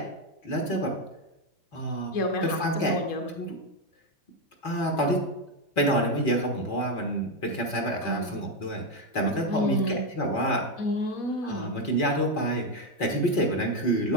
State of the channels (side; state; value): right; late; 4.2 ms